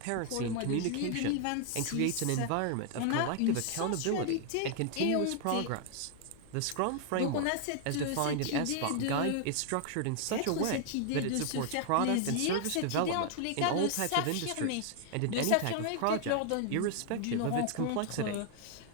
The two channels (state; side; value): different; both; correlation 0.00